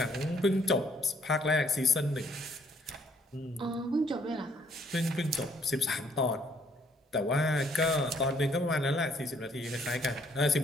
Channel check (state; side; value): normal; both; correlation 0.65